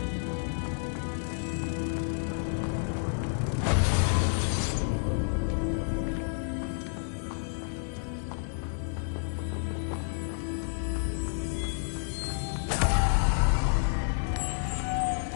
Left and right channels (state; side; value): silent; right; digital silence